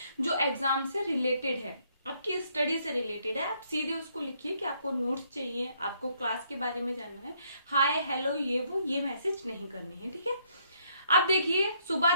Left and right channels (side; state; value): both; inverted; correlation -0.70